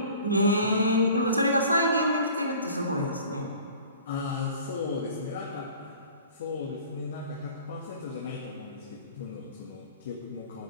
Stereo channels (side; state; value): both; inverted; correlation -0.45